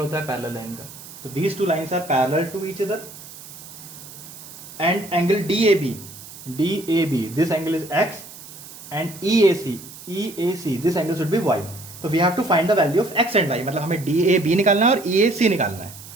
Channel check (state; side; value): noise; right; hiss, 16 dB below the sound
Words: है पैरेलल लाइन का. तो these two lines are parallel to each other. And angle DAB, this angle is X, and EAC, this angle should be Y. तो we have to find the value of X and Y. मतलब हमें DAB निकालना है और EAC निकालना है.